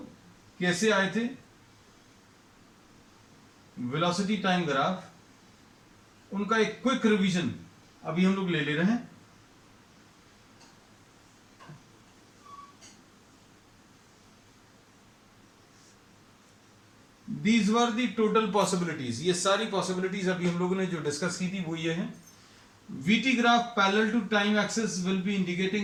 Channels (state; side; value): identical; both; correlation 1.00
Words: कैसे आए थे? वेलोसिटी टाइम ग्राफ उनका एक क्विक रिवीजन अभी हम लोग ले रहे हैं. These were the total possibilities. ये सारी possibilities अभी हम लोगों ने जो डिस्कस की थी वो ये है. VT graph parallel to time axis will be